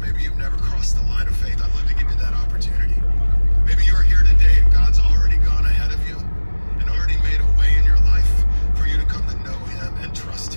you've never crossed the line of faith. I'd love to give you that opportunity. Maybe you're here today and God's already gone ahead of you and already made a way in your life for you to come to know him and trust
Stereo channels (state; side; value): inverted; both; correlation -1.00